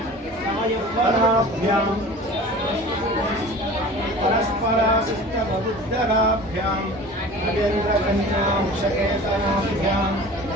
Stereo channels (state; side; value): normal; both; correlation 0.40